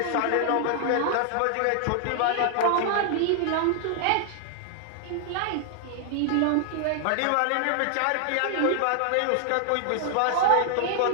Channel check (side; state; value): both; different; correlation 0.00